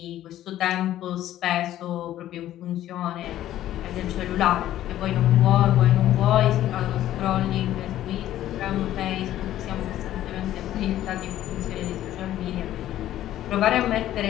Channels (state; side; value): quieter; right; 13.0 dB